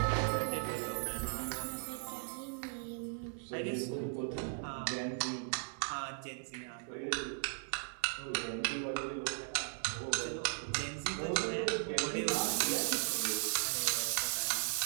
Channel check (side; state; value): left; silent; 53 dB below the other